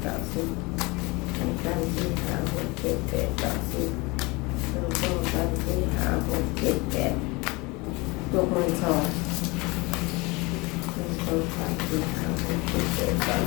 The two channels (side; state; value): right; quieter; 25.4 dB